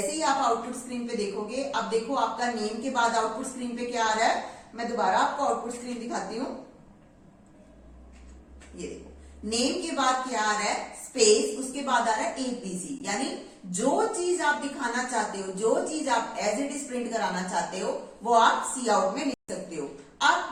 ही आप आउटपुट स्क्रीन पे देखोगे, अब देखो आपका नेम के बाद आउटपुट स्क्रीन पे क्या आ रहा है, मैं दोबारा आपको आउटपुट स्क्रीन दिखाती हूँ। ये देखो नेम के बाद क्या आ रहा है, स्पेस, उसके बाद आ रहा है ABC। यानी जो चीज आप दिखाना चाहते हो, जो चीज आप एज इट इज प्रिंट कराना चाहते हो, वो आप सी आउट में लिख सकते हो।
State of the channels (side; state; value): both; identical; correlation 1.00